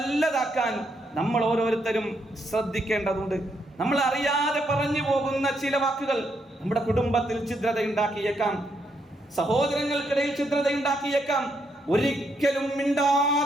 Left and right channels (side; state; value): both; normal; correlation 0.77